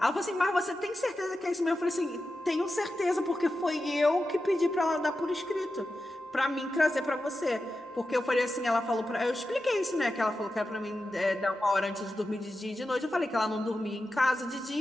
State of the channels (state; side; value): normal; both; correlation 0.91